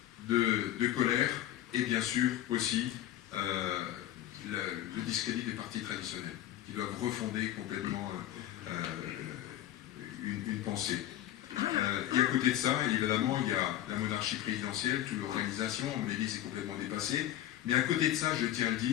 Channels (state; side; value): quieter; right; 12.6 dB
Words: de colère, et bien sûr aussi le discrédit des partis traditionnels, qui doivent refonder complètement une pensée. Et à côté de ça, évidemment, il y a la monarchie présidentielle, toute l'organisation, à mon avis, c'est complètement dépassé. Mais à côté de ça, je tiens à le